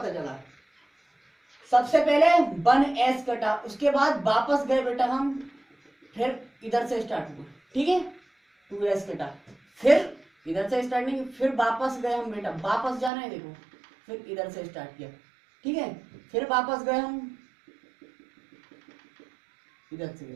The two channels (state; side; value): drops out; left; at 13.1 s